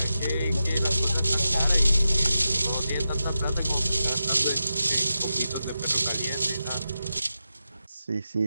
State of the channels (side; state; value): both; inverted; correlation -0.90